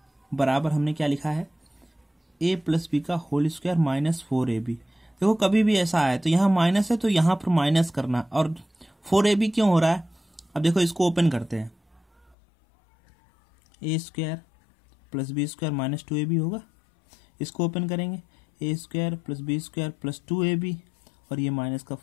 बराबर हमने क्या लिखा है? a + बी का होल स्क्वायर -4ab। देखो कभी भी ऐसा आए तो यहाँ माइनस है तो यहाँ पर माइनस करना। और 4ab क्यों हो रहा है? अब देखो इसको ओपन करते हैं। a² + b² -2ab होगा। इसको ओपन करेंगे, a² + b² + 2ab, और ये माइनस का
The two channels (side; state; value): right; drops out; at 12.4 s